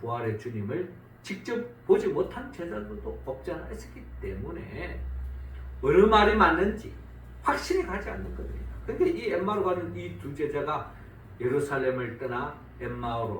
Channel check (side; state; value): both; identical; correlation 1.00